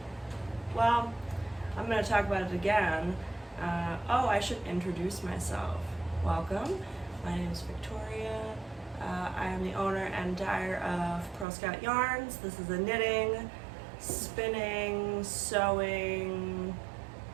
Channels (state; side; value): drops out; left; at 11.5 s